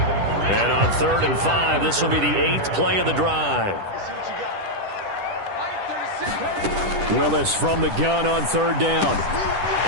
And on 3rd and 5, this will be the 8th play of the drive. Willis from the gun on 3rd down.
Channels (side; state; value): left; late; 10 ms